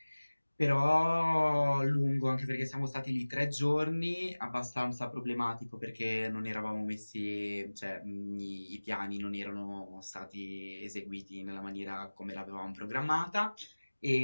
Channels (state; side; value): inverted; both; correlation -1.00